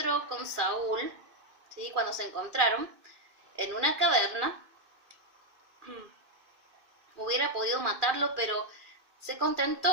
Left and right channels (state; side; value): late; left; 2.6 ms